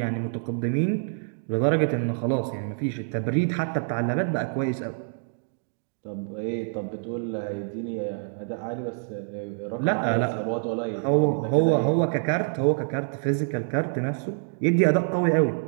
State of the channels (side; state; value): left; silent; digital silence